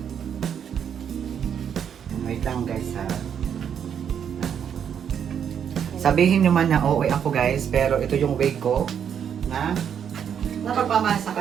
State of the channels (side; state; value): left; quieter; 8.2 dB